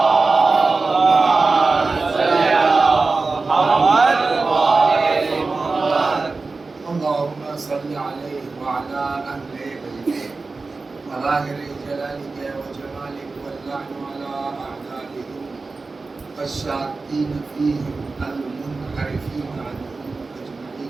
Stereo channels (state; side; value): quieter; left; 3.9 dB